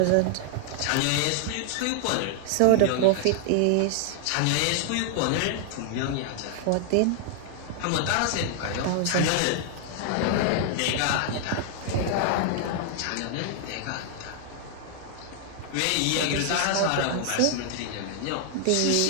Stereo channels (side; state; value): both; different; correlation 0.00